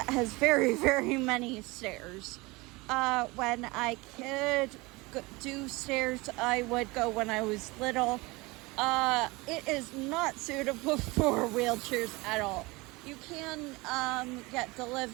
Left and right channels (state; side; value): quieter; left; 23.7 dB